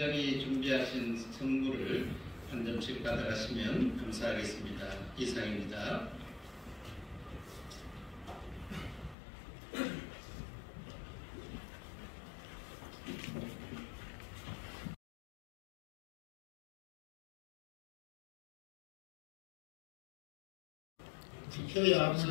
준비하신 선물을 한 점씩 받아가시면 감사하겠습니다. 이상입니다. 투표에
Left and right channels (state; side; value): drops out; right; at 9.2 s